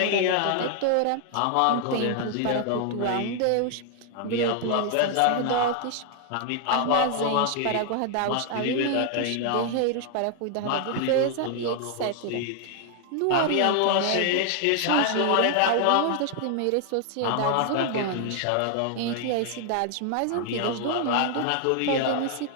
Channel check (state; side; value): different; both; correlation 0.00